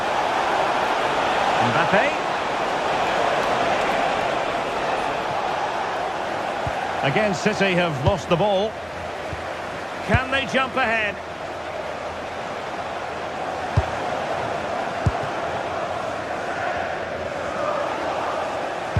Mbappe. Again, City have lost the ball. Can they jump ahead?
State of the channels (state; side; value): identical; both; correlation 1.00